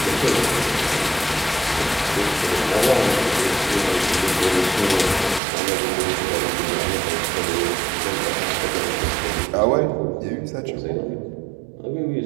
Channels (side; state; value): left; drops out; at 5.4 s